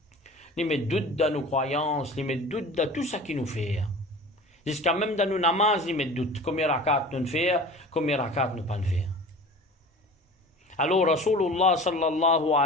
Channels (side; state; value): both; normal; correlation 0.39